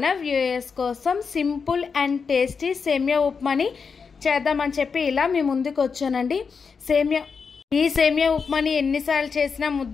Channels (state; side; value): quieter; right; 5.5 dB